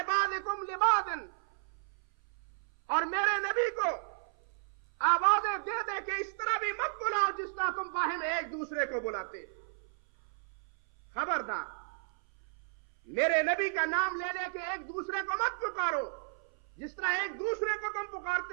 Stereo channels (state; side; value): silent; left; 55 dB below the other